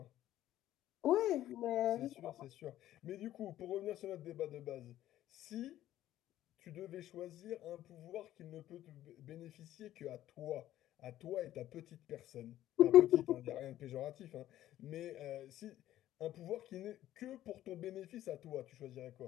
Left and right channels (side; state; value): right; quieter; 13.3 dB